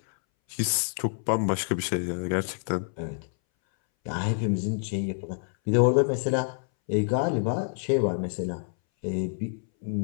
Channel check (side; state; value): right; silent; 60 dB below the other